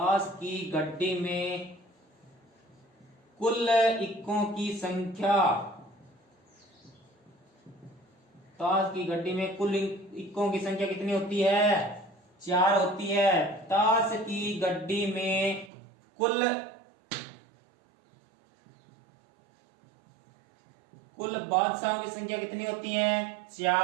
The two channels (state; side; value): drops out; left; at 15.7 s